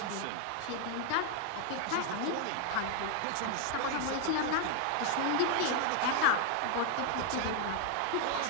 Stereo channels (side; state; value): both; different; correlation 0.00